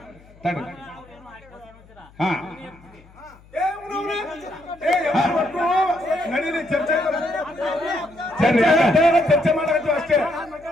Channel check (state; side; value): noise; left; hum, 25 dB below the sound